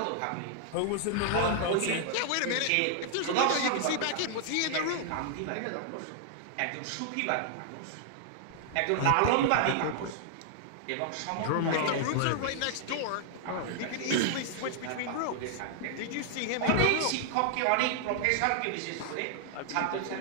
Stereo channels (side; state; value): both; different; correlation 0.00